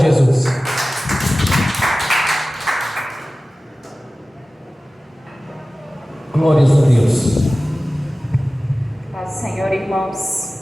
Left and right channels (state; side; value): normal; both; correlation 0.96